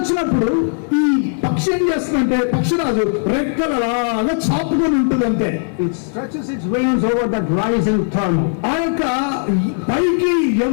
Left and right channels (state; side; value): silent; right; 57 dB below the other